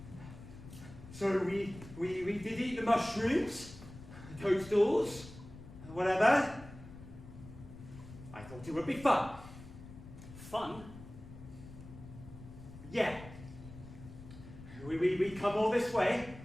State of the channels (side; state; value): left; noise; rumble, 15 dB below the sound